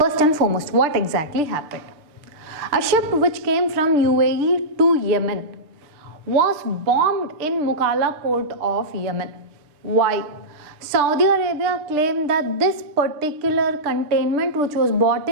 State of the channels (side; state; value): left; late; 6.7 ms